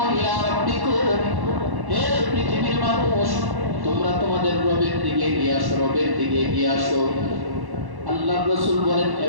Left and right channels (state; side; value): late; left; 1.1 ms